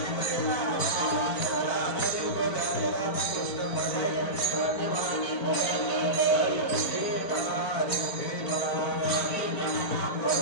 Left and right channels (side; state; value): right; late; 4.5 ms